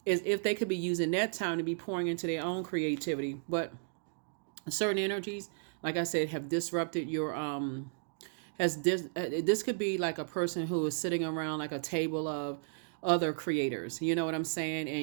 As if they could be using that time to be pouring into their own creativity. But certain energies, like I said, have disrupted your this could be like a person who is sitting around like a table of other creators, you know what I'm saying,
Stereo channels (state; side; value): silent; left; digital silence